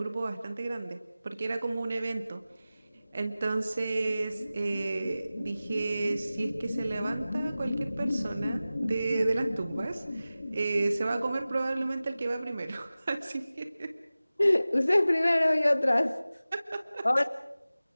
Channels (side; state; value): both; inverted; correlation -0.96